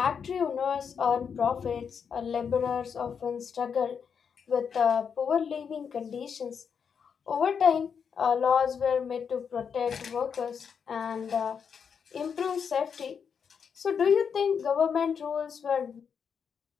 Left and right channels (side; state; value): right; quieter; 6.8 dB